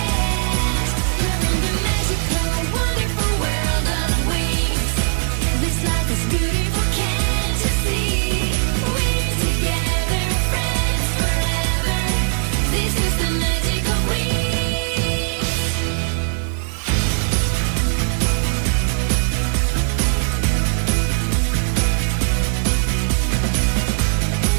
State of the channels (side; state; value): left; silent; digital silence